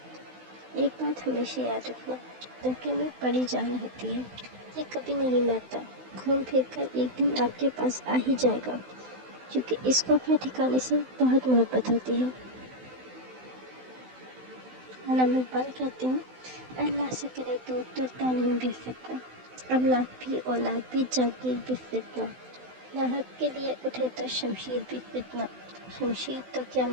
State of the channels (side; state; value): left; late; 16 ms